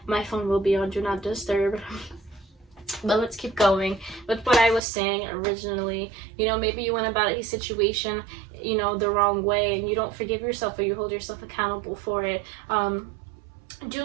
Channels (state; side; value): drops out; left; at 4.8 s